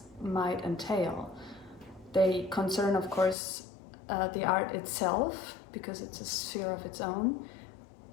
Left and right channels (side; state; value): right; drops out; at 3.4 s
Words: might entail. They concern, of course, the art itself, because it's a sphere of its own,